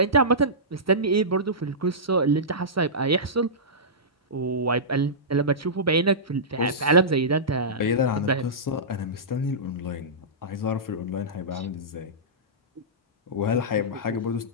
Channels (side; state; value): both; normal; correlation -0.17